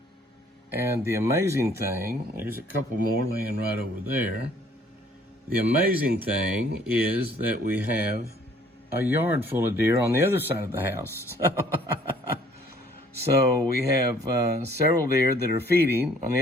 And the amazing thing, there's a couple more laying right over there. The amazing thing is that we have a yard full of deer on the other side of the house. So we have several deer that are feeding on the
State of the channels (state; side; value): normal; both; correlation 0.58